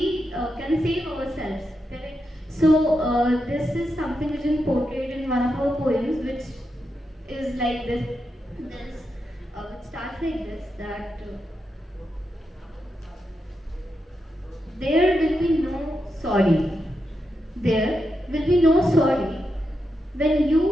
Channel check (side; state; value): both; normal; correlation 0.86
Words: can save ourselves, correct? So this is something which is portrayed in one of our poems, which is like this. It starts like this, that there will be no sorry. There will be no sorry. When